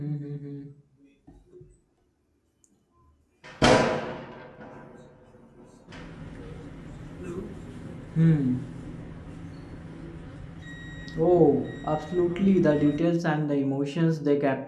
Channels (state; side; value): identical; both; correlation 1.00